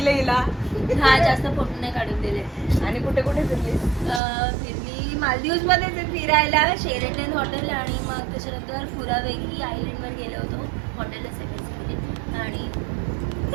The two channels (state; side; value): drops out; left; at 4.2 s